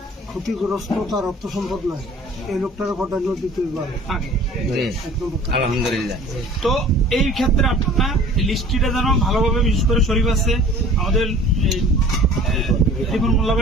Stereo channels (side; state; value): both; normal; correlation 0.47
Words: ক্ষতিগ্রস্ত, তার অর্থ সম্পদ নাই, এই লোকটার প্রাধান্য দিতে পারে। আলহামদুলিল্লাহ। তো এই ক্ষেত্রে আপনার লিস্টটা যেন ভালোভাবে, বিশেষ করে শরীফ আছে, আমাদের মোল্লা